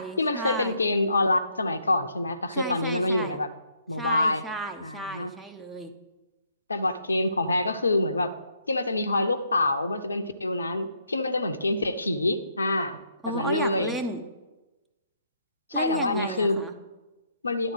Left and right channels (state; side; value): inverted; both; correlation -0.72